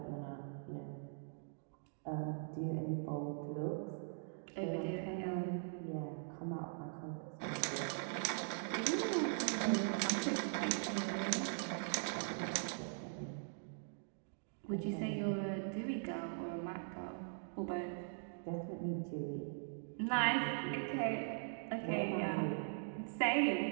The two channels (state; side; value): silent; left; digital silence